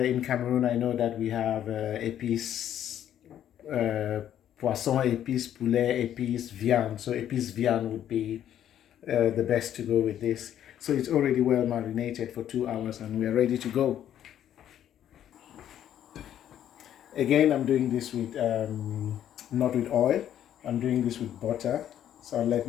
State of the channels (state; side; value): quieter; right; 10.7 dB